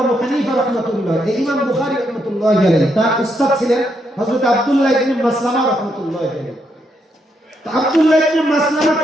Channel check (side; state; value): both; normal; correlation 0.78